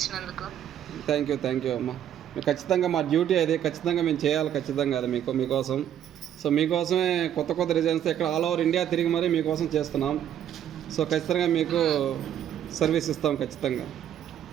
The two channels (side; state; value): left; quieter; 10.3 dB